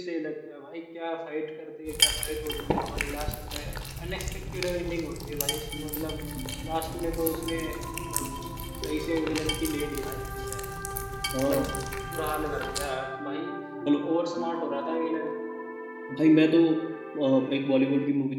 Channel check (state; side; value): identical; both; correlation 1.00